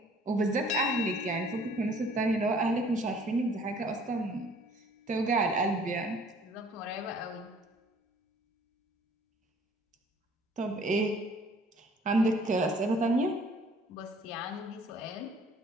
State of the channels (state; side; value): normal; both; correlation 0.55